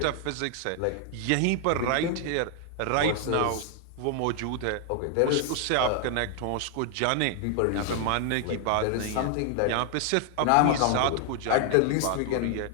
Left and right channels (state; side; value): different; both; correlation 0.00